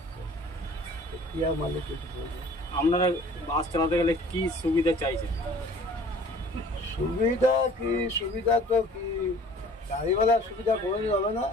কি আর মালিক কিছু বলবো। আপনারা বাস চালাতে গেলে কি সুবিধা চাইছেন? সুবিধা কি, সুবিধা তো কি, গাড়িওয়ালার সুবিধা কোনোদিন হবে না।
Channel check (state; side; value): normal; both; correlation 0.50